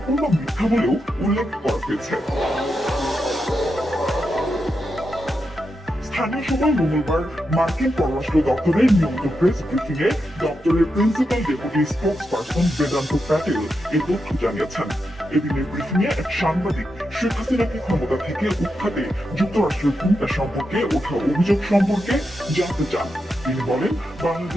মিথ্যা বলেও উল্লেখ করা হয়েছে। স্থানীয় সময় মঙ্গলবার মার্কিন পররাষ্ট্র দপ্তরের নিয়মিত প্রেস ব্রিফিং এ দপ্তরের principal deputy spokesperson Vedanta Patel এই তথ্য জানিয়েছেন। এদিনের ব্রিফিং এ এক সাংবাদিক শেখ হাসিনাকে ক্ষমতা থেকে উৎখাতে যুক্তরাষ্ট্রের ভূমিকা সম্পর্কে ওঠা অভিযোগ সম্পর্কে জানতে চান। তিনি বলেন,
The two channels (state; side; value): normal; both; correlation 0.86